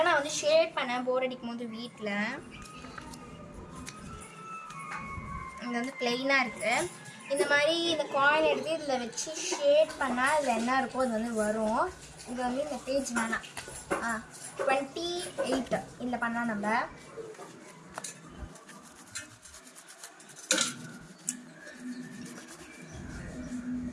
நான் ஷேட் பண்ணேன் போர் அடிக்கும் போது வீட்டில். இது ப்ளெயினாக இருக்குது. இந்த மாதிரி இந்த காயின் எடுத்து இதில் வச்சு ஷேட் பண்ணால் இதில் என்ன இருக்கோ அது வரும். இது இந்த பேஜ் வேணாம். 28 இதில் பண்ணலாம் நம்ம.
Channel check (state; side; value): identical; both; correlation 1.00